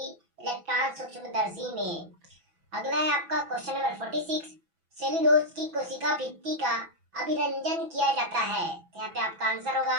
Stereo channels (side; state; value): left; late; 6.0 ms